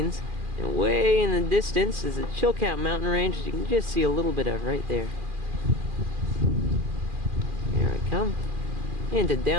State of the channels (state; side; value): late; left; 2.4 ms